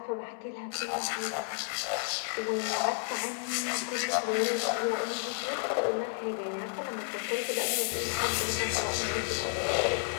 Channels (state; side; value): silent; right; 57 dB below the other